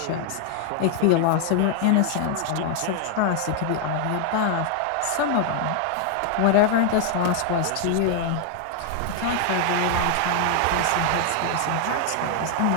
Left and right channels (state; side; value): different; both; correlation 0.00